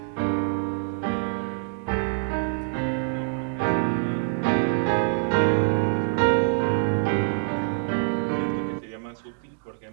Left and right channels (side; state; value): left; silent; digital silence